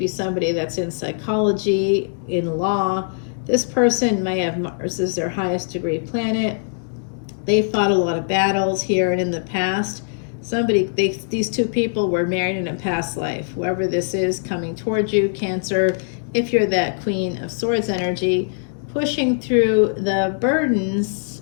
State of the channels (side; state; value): right; silent; digital silence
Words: somebody that's in psychology, in law. This person may have Mars as their highest degree planet. They fought a lot of battles here and in the past. These two people were married in a past life. Whoever this is coming towards you, Cancer, if you're that Queen of Swords energy, pushing through the burdens